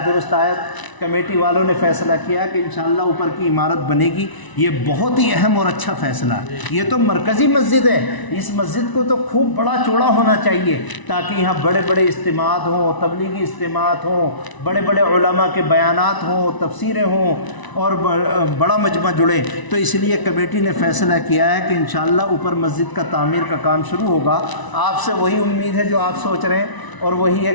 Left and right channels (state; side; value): late; right; 1.0 ms